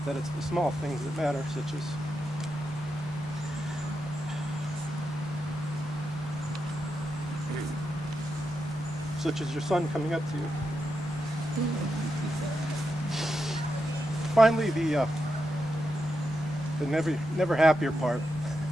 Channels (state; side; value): normal; both; correlation 0.86